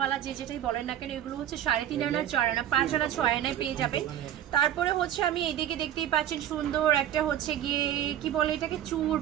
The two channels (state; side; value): quieter; left; 11.1 dB